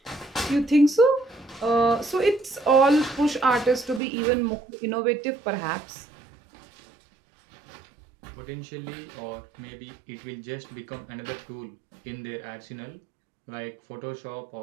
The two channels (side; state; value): left; drops out; at 4.0 s